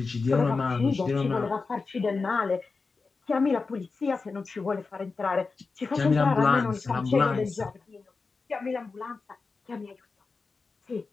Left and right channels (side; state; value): right; quieter; 4.3 dB